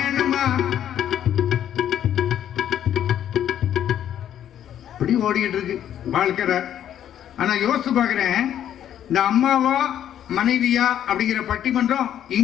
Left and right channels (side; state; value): right; quieter; 10.5 dB